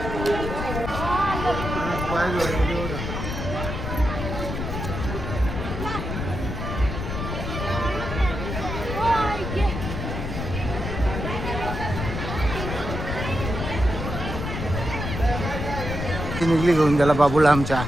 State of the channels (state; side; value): noise; left; rumble, 4 dB below the sound